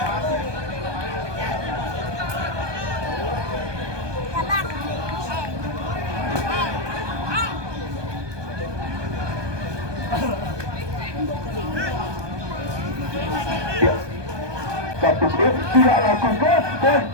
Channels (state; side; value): late; left; 1.2 ms